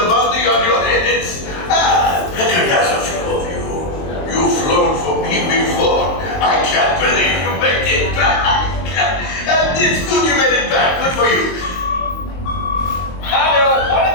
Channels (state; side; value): late; right; 23 ms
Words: bounty on your heads. Recognize a few of you. You've flown for me before. I can't believe you made it back. And it's good you made it back. Good for you. Hello, one